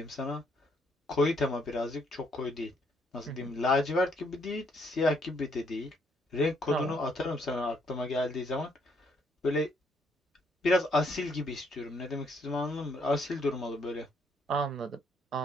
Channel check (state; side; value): normal; both; correlation 0.70